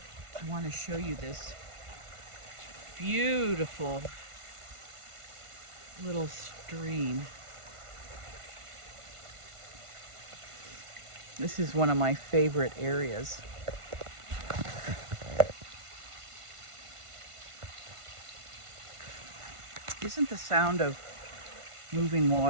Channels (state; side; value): late; left; 1.5 ms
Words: I want to show you this beautiful little stream. This is one of my favorite areas. Isn't the sound of moving